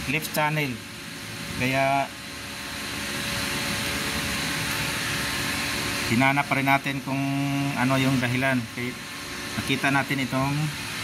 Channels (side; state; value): both; identical; correlation 1.00